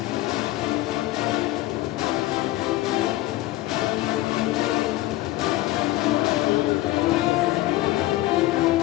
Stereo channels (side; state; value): right; quieter; 16.9 dB